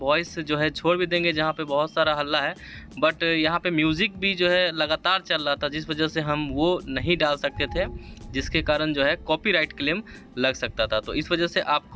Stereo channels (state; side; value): identical; both; correlation 1.00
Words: जो है छोड़ भी देंगे जहाँ पे बहुत सारा हल्ला है, बट यहाँ पे म्यूज़िक भी जो है लगातार चल रहा था, जिस वजह से हम वो नहीं डाल सकते थे, जिसके कारण जो है कॉपीराइट क्लेम लग सकता था। तो इस वजह से